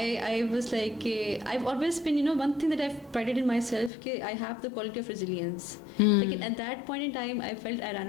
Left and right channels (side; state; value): right; drops out; at 3.9 s